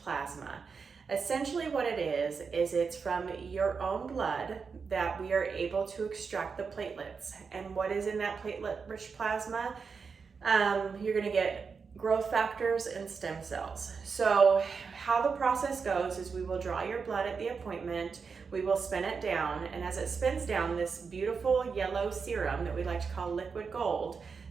plasma. Essentially what it is it's from your own blood that we are able to extract the platelets. And what is in that platelet-rich plasma? You're gonna get growth factors and stem cells. So how the process goes is we will draw your blood at the appointment, we will spin it down, and as it spins down, this beautiful yellow serum that we like to call liquid gold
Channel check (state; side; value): quieter; left; 5.4 dB